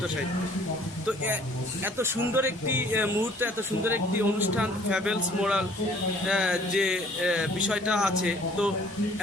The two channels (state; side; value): normal; both; correlation 0.56